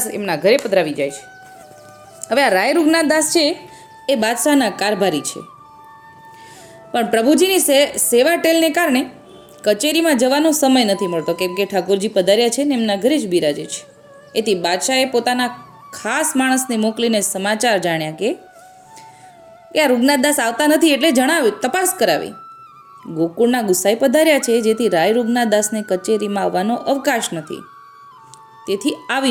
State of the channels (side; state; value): both; identical; correlation 1.00